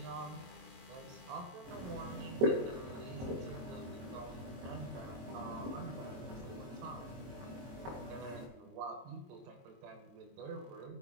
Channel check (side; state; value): left; late; 22 ms